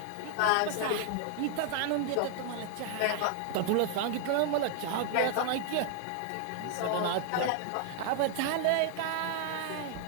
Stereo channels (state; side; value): different; both; correlation 0.00